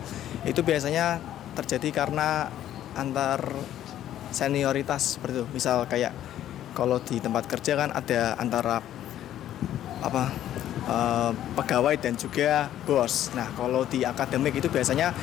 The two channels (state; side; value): quieter; right; 11.9 dB